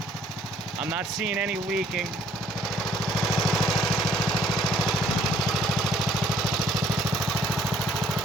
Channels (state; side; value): normal; both; correlation 0.61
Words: I'm not seeing any leaking. See